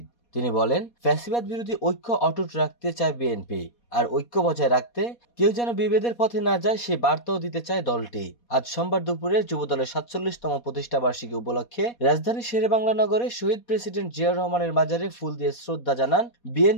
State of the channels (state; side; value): late; right; 4.2 ms